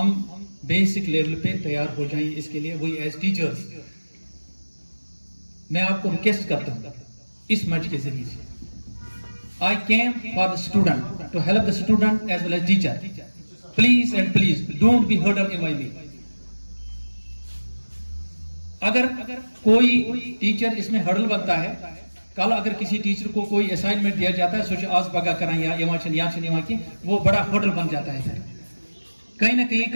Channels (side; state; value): both; inverted; correlation -1.00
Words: بیسک لیول پہ تیار ہو جائیں اس کے لیے. وہی ایز ٹیچرز میں آپ کو ریکویسٹ کرتا ہوں اس منچ کے ذریعے سے. I came for the student, to help the student as well as teacher. Please and please don't be hurdle in my way. اگر کوئی ٹیچر اس میں ہرڈل بنتا ہے, کل اگر کسی ٹیچر کو کوئی اسائنمنٹ دیا جاتا ہے سوچے آج بگا کریں یا یہاں کی وہ بڑا ہرڈل بن جاتا ہے. کہیں نہ کہیں